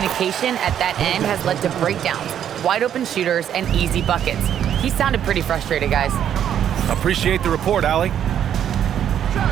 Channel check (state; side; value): quieter; left; 9.7 dB